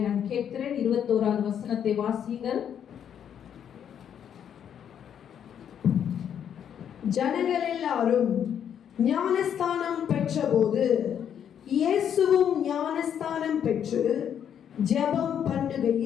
நான் கேட்கிறேன். 21வது வசனத்தை வாசிங்கள். ஜனங்கள் எல்லாரும் ஞானஸ்தானம் பெற்றபோது இயேசுவும் ஞானஸ்தானம் பெற்று ஜெபம்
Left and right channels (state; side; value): quieter; right; 8.9 dB